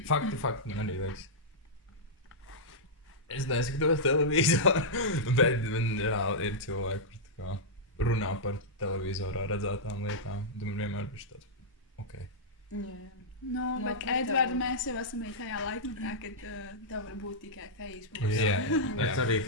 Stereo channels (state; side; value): normal; both; correlation -0.09